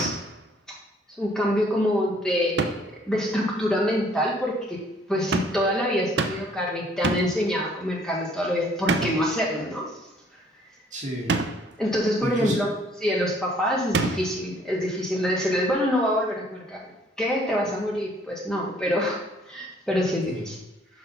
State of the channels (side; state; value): both; normal; correlation 0.60